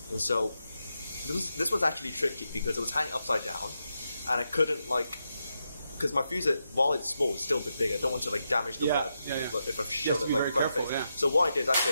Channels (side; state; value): both; inverted; correlation -0.85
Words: And so this was actually tricky because it was hanging upside down, and I couldn't because my fusee, while it's small, it's still a bit big. I don't want to damage the web if I show it front face. So what I did is